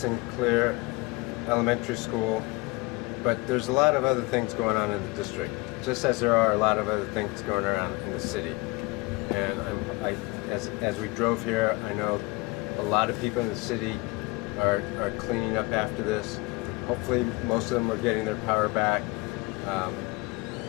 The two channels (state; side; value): quieter; right; 24.8 dB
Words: Elementary School, but there's a lot of other things going on in the district, just as there are a lot of other things going around in the city. And as we drove here, I know a lot of people in the city are cleaning up after this. Hopefully, most of them are getting their power back.